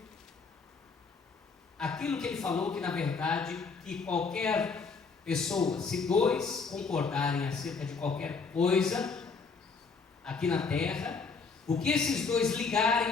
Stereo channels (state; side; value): quieter; right; 4.8 dB